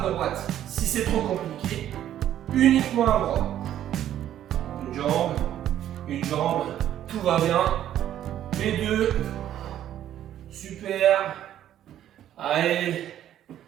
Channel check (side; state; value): left; quieter; 11.4 dB